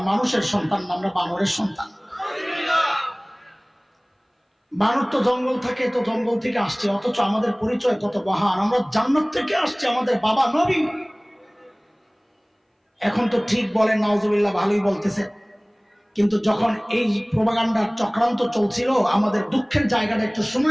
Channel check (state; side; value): identical; both; correlation 1.00